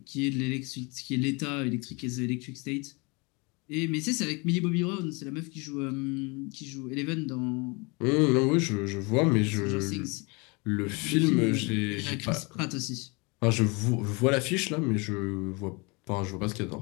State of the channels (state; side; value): quieter; right; 28.7 dB